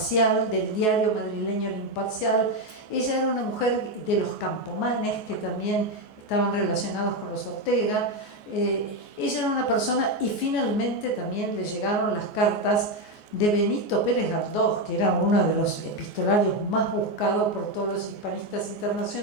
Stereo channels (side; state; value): right; late; 14 ms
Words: del diario madrileño El Imparcial. Ella era una mujer de los Campomanes, que también estaban relacionados con los Ortega. Ella era una persona, y finalmente también le llegaron las cartas de Benito Pérez Galdós, que era uno de los epistolarios más buscados por todos los hispanistas